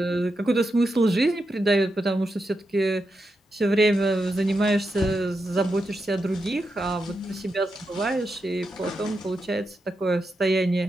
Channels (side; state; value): both; normal; correlation 0.86